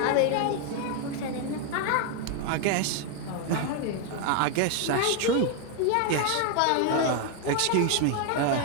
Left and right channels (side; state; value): both; different; correlation 0.01